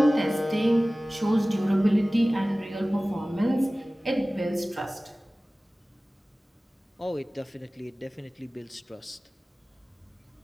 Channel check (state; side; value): normal; both; correlation 0.97